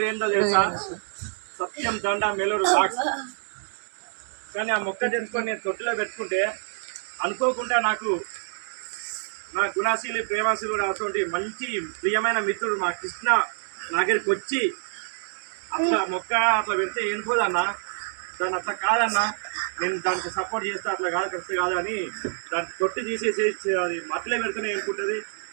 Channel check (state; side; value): silent; left; digital silence